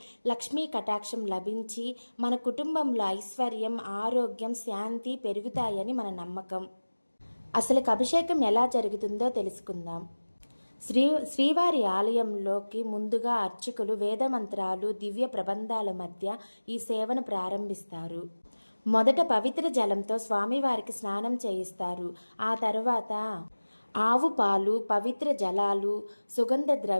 లక్ష్మీ కటాక్షం లభించి మన కుటుంబంలో ఐశ్వర్యం, ఆరోగ్యం, శాంతి పెరుగుతాయని మన నమ్మకం. అసలు అభిషేకం ఎలా జరుగుతుందో తెలుసుకుందాం. శ్రీవారి ఆలయంలోకి ముందుగా అర్చకులు వేదమంత్రాలు, దివ్య ప్రబంధాల మధ్య ఈ సేవను ప్రారంభిస్తారు. మొదట పవిత్ర జలంతో స్వామివారికి స్నానం చేయిస్తారు. ఆ తర్వాత ఆవు పాలు, పవిత్ర జలాలు, సుగంధ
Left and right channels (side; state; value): both; inverted; correlation -1.00